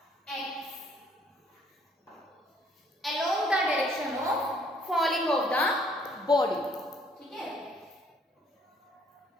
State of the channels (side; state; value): both; normal; correlation 0.64